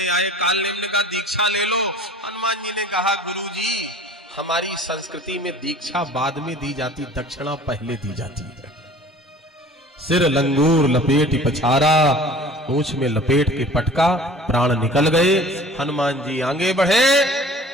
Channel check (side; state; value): both; normal; correlation 0.45